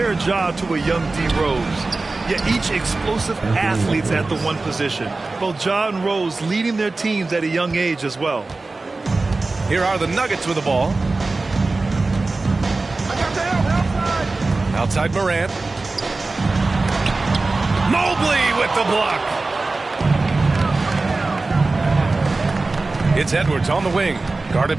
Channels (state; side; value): quieter; left; 3.5 dB